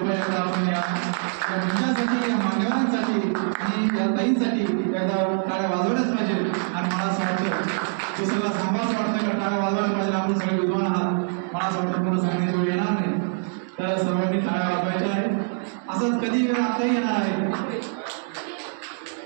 आपण या मंचासाठी या मान्यवरांसाठी आणि या ताईंसाठी एकदा टाळ्या वाजवल्याच पाहिजे. आणि मला असं वाटतं तो सगळा सांभाळच वाटतं का टाळ्या वाजवायला पाहिजे. आपण सगळे विद्वान आहात, मला असं वाटतं पुन्हा सांगण्याची वेळ येणार नाही. तर सर्वांनी टाळ्या वाजवायच्या आहे. असंच कधी वेळ आताही येणार आहे.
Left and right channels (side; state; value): left; silent; 57 dB below the other